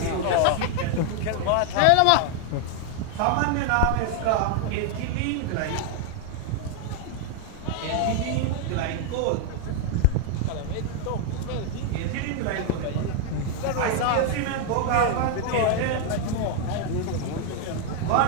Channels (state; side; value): different; both; correlation 0.00